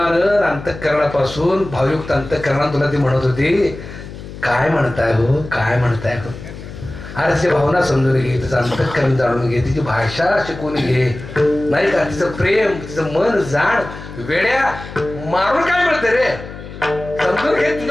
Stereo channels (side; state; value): left; noise; hum, 13 dB below the sound